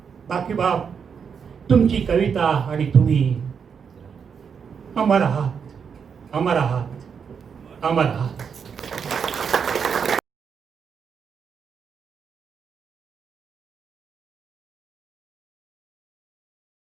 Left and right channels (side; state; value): left; quieter; 6.6 dB